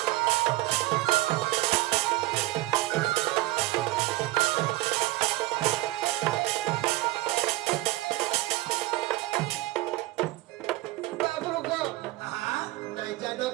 বাবু গো হ্যাঁ নাই জানো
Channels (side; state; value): left; quieter; 18.5 dB